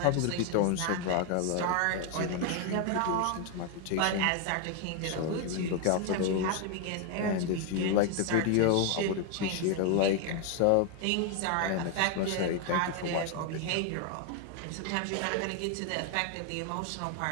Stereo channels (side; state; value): both; different; correlation 0.01